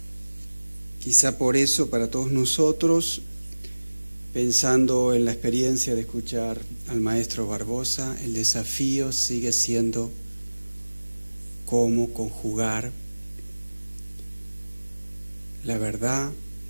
Quizá por eso, para todos nosotros, pensando en la experiencia de escuchar al maestro Barbosa, el desafío sigue siendo cómo conjugar la verdad,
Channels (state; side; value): inverted; both; correlation -1.00